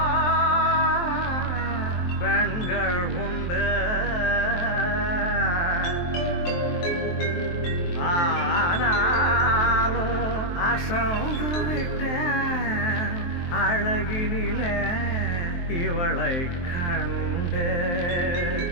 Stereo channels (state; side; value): late; right; 23 ms